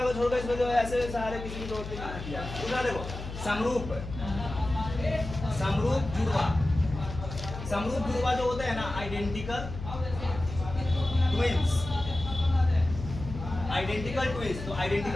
को छोड़कर इसमें जो है ऐसे सहारे किसी की जरूरत नहीं किया। दूसरा देखो, समरूप जुड़वा जो होते हैं ना, आइडेंटिकल ट्विंस। तो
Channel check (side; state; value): left; noise; hum, 9 dB below the sound